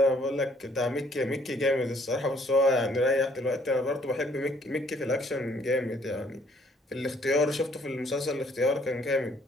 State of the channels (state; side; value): normal; both; correlation 0.63